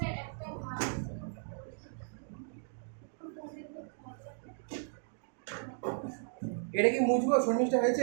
একটা ভাগ এটা কি মুছবো? শর্মিষ্ঠা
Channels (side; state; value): left; silent; digital silence